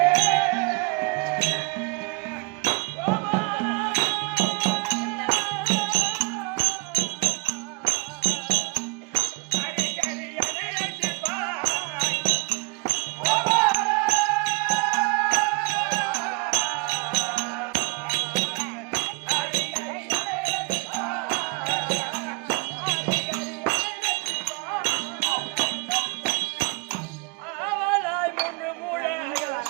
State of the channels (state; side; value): quieter; left; 30.2 dB